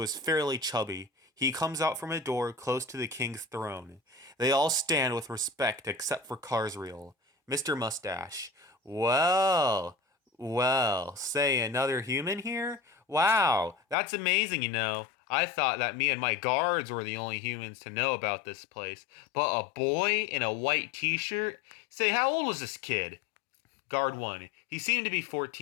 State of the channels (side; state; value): right; drops out; at 14.0 s